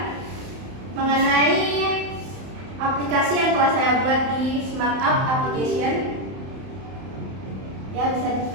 mengenai aplikasi yang telah saya buat di Smart App Application. Ya, bisa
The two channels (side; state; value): left; late; 31 ms